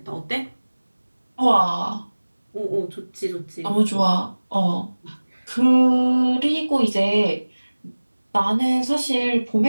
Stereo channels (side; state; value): both; inverted; correlation -1.00